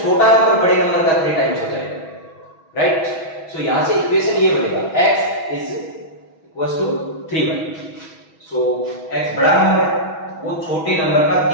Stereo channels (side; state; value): right; late; 6.2 ms